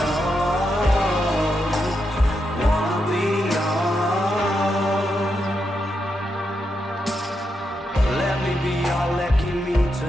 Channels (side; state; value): both; normal; correlation 0.84